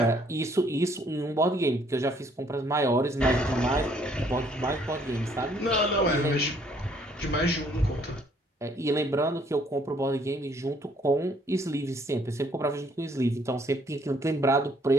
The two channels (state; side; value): normal; both; correlation 0.64